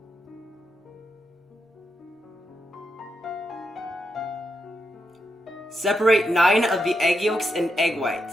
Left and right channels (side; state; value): both; normal; correlation 0.83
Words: Separate 9 of the egg yolks and egg whites.